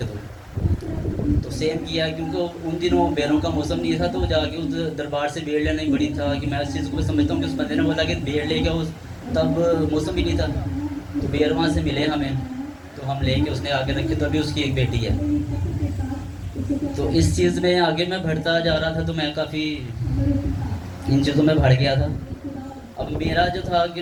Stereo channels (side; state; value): both; identical; correlation 1.00